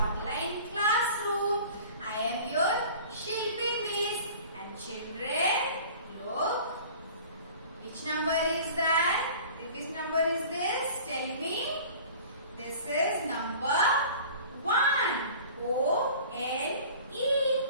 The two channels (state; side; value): inverted; both; correlation -0.44